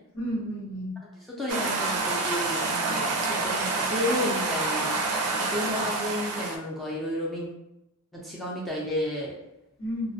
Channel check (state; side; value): normal; both; correlation 0.18